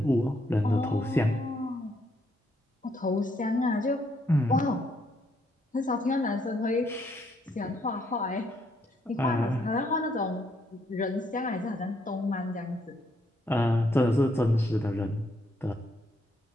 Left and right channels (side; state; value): both; normal; correlation 0.72